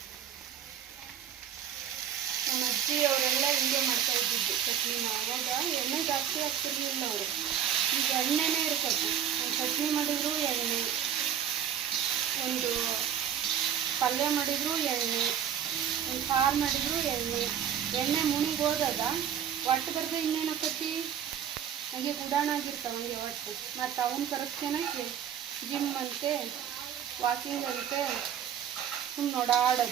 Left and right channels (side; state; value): left; quieter; 9.4 dB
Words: ನಮ್ಮ ಅಜ್ಜಿ ಅವರೆಲ್ಲ ಹಿಂಗೆ ಮಾಡ್ತಾ ಇದ್ದಿದ್ದು ಚಟ್ನಿನ. ಅವಾಗ ಎಣ್ಣೆ ಜಾಸ್ತಿ ಹಾಕ್ತಿರ್ಲಿಲ್ಲ ಅವರು, ಈಗ ಎಣ್ಣೆನೇ ಇರ್ತದೆ. ಒಂದು ಚಟ್ನಿ ಮಾಡಿದ್ರು ಎಣ್ಣೆ, ಒಂದು ಪಲ್ಯ ಮಾಡಿದ್ರು ಎಣ್ಣೆ, ಒಂದು ಸಾರು ಮಾಡಿದ್ರು ಎಣ್ಣೆ. ಎಣ್ಣೆ ಮುನಿಗೆ ಹೋದಾಗ ಒಟ್ಟು ಬರ್ದು ಇನ್ನೇನು ಹಾಕತ್ತಿ ಹಂಗೆ ಗುಡಾಣ ಆಗಿರ್ತಾವೆ ಹಂಗೆ ಒಟ್ಟು. ಮತ್ತು ಅವನ್ನ ಕರೆಸ್ಕೊಳಕ್ಕೆ ಜಿಮ್ ಅಂತೆ, ವಾಕಿಂಗ್ ಅಂತೆ, ಸುಮ್ಮನೆ